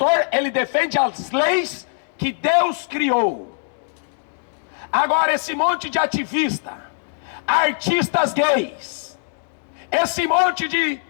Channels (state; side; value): silent; right; digital silence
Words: ele defende as leis que Deus criou. Agora, esse monte de ativista, artistas gays, esse monte de